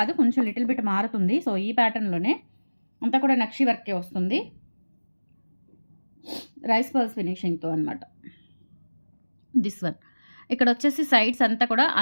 కొంచెం లిటిల్ బిట్ మారుతుంది. సో ఈ ప్యాటర్న్లోనే అంతా కూడా నక్షి వర్కే వస్తుంది, రైస్ పర్ల్స్ ఫినిషింగ్తో అనమాట. దిస్ వన్ ఇక్కడ వచ్చేసి సైడ్స్ అంతా కూడా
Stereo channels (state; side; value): inverted; both; correlation -1.00